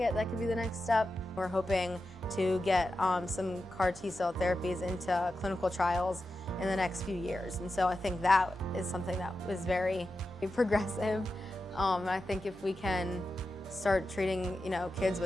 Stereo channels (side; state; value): both; normal; correlation 0.91